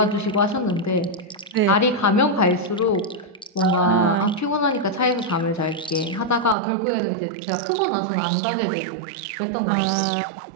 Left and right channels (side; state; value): left; drops out; at 6.6 s